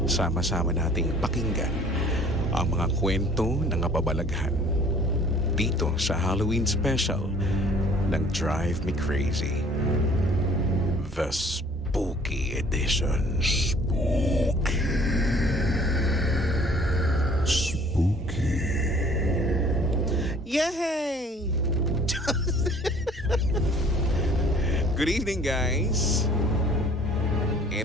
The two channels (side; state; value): both; normal; correlation 0.54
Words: sama-sama nating pakinggan ang mga kwento ng kababalaghan dito sa Halloween special ng Drive Me Crazy, The Spooky Edition. Spooky. Yay! Good evening, guys.